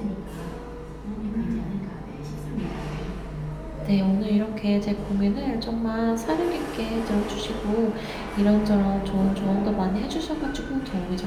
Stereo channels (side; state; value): both; identical; correlation 1.00